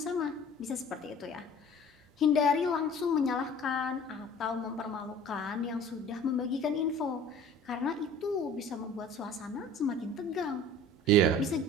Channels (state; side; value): normal; both; correlation 0.46